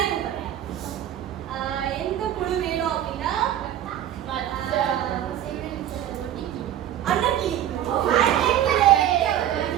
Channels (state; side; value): quieter; left; 11.4 dB